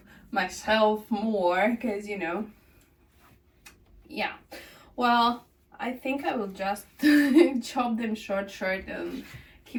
myself more, because yeah, well, I think I will just chop them short and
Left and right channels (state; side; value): identical; both; correlation 1.00